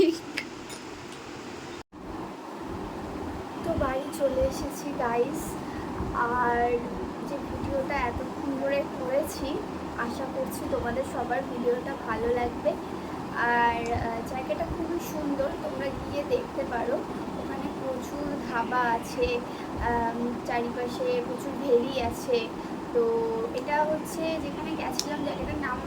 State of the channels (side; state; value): both; identical; correlation 1.00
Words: তো বাড়ি চলে এসেছি গাইজ। আর যে ভিডিওটা এতক্ষণ ধরে করেছি, আশা করছি তোমাদের সবার ভিডিওটা ভালো লাগবে। আর জায়গাটা খুবই সুন্দর, তোমরা গিয়ে দেখতে পারো। ওখানে প্রচুর ধাবা আছে, চারিপাশে প্রচুর ভেরি আছে। তো এটা হচ্ছে যেখানে গেছিলাম, জায়গাটার নাম